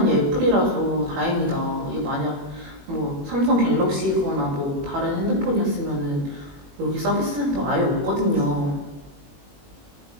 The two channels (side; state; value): left; late; 21 ms